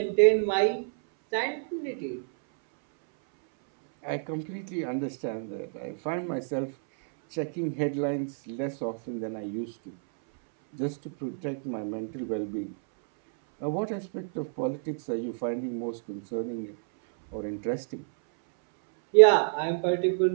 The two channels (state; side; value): silent; left; 59 dB below the other